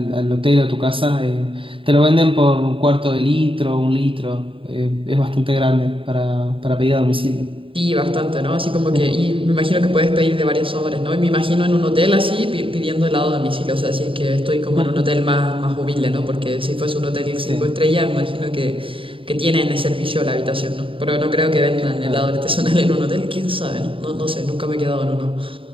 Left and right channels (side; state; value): left; late; 0.25 ms